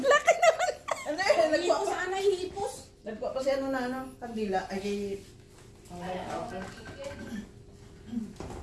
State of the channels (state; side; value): identical; both; correlation 1.00